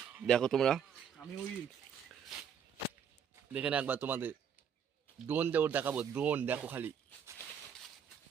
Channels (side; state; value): left; quieter; 7.6 dB